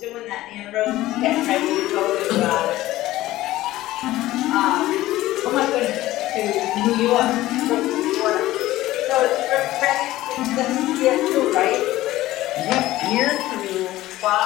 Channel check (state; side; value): quieter; right; 16.2 dB